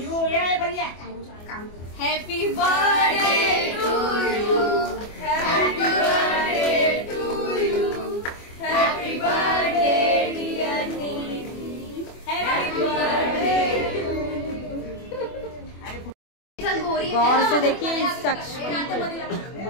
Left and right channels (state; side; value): late; right; 24 ms